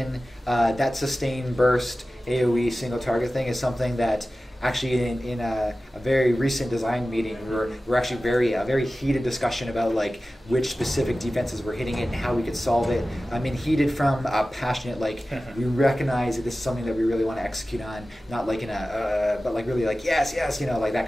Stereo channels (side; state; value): both; normal; correlation 0.95